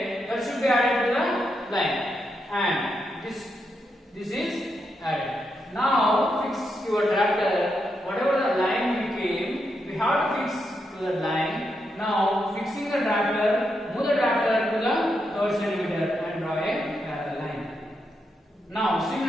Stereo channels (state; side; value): normal; both; correlation 0.83